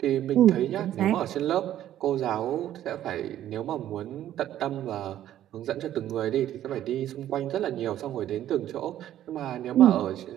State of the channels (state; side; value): quieter; left; 12.1 dB